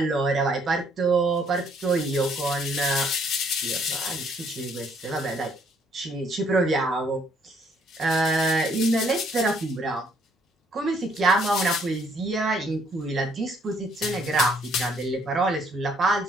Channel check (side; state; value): both; normal; correlation 0.66